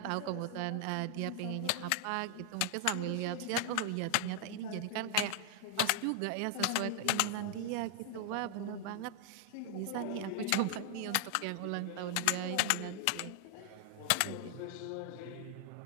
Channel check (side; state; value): both; different; correlation 0.00